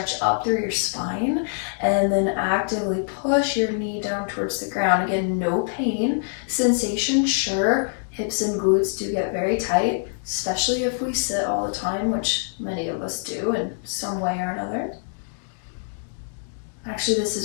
up through your spine and then actively push your knee down towards the ground. Again, no pain. Sensation, sure. Hips and glutes do get very tight, especially if we sit all the time, which many of us do in some way or another. Actually, this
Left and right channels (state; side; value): silent; right; digital silence